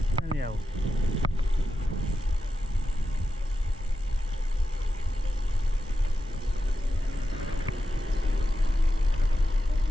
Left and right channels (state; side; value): normal; both; correlation 0.90